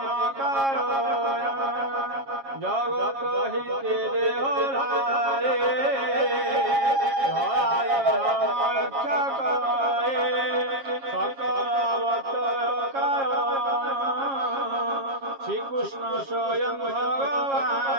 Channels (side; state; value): left; late; 7.3 ms